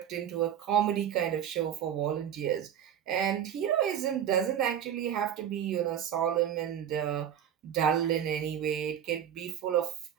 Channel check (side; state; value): left; quieter; 9.6 dB